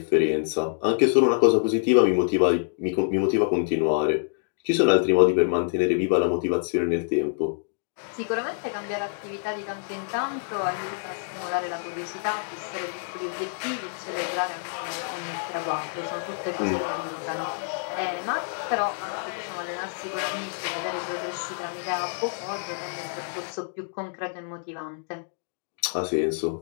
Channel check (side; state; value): right; silent; digital silence